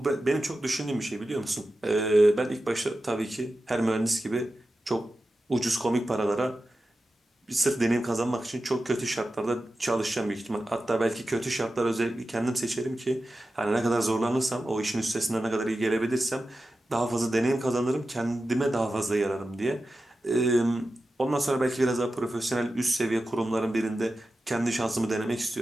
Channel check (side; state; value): both; normal; correlation 0.93